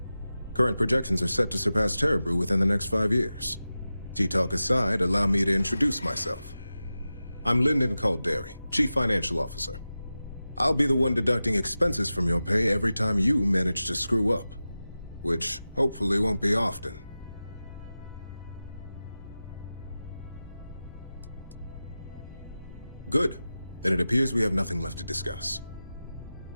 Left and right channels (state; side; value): inverted; both; correlation -0.94